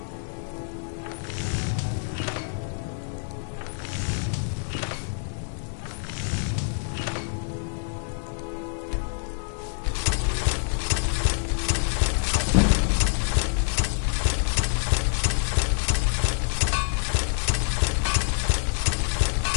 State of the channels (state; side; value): silent; right; digital silence